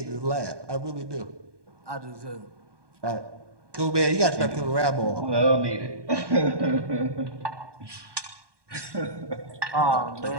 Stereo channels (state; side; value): late; left; 1.2 ms